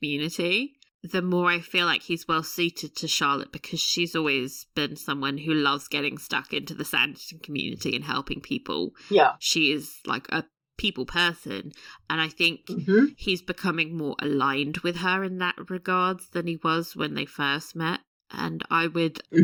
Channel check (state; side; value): identical; both; correlation 1.00